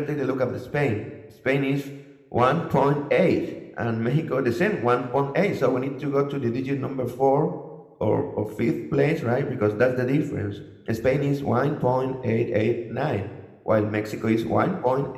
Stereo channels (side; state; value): both; identical; correlation 1.00